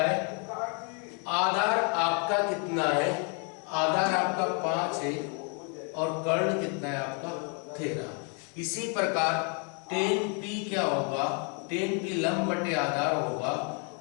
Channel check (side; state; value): right; quieter; 37.7 dB